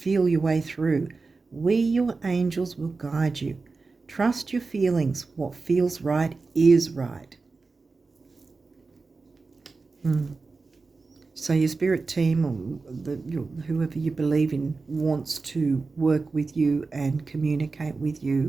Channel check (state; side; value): quieter; left; 4.0 dB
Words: your way through. We, your angels, will guide you. Trust your feelings. What feels right is right. So your spirit team or whoever you believe in wants to work with you and communicate with